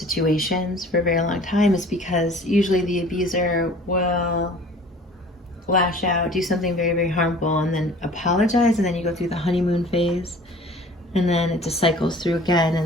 for a very long time. Is because usually the abuser will lash out, do something very, very harmful, and then apologize, and then you go through the honeymoon phase, and then it just cycles through again,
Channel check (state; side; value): normal; both; correlation 0.48